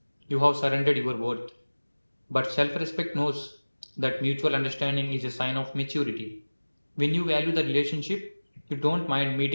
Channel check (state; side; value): inverted; both; correlation -1.00